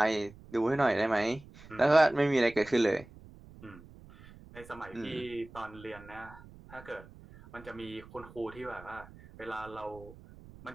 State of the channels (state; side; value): noise; right; rumble, 20 dB below the sound